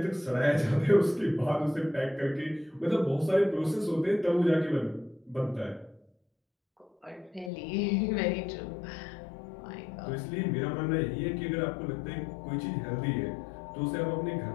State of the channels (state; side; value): drops out; right; at 7.5 s